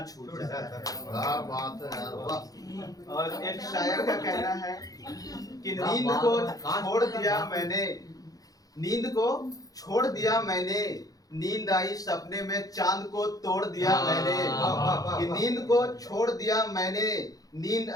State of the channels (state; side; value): late; right; 0.17 ms